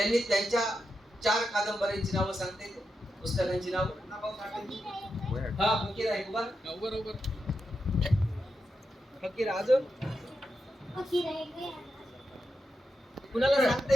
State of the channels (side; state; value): both; normal; correlation 0.87